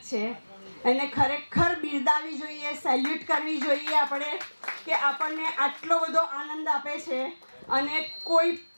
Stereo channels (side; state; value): both; inverted; correlation -1.00